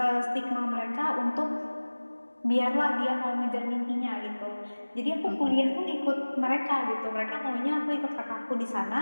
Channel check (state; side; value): inverted; both; correlation -1.00